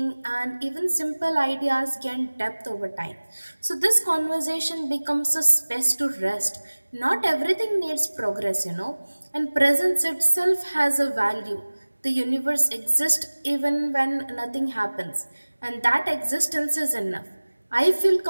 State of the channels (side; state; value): both; inverted; correlation -1.00